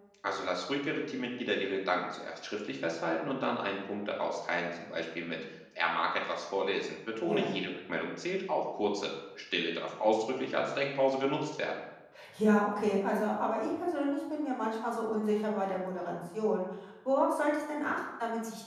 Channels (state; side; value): identical; both; correlation 1.00